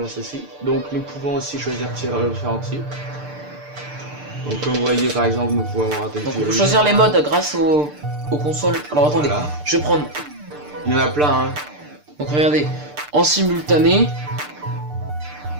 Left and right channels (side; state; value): left; late; 6.7 ms